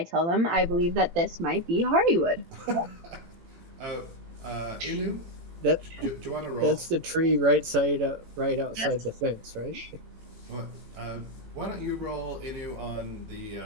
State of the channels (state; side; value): late; left; 18 ms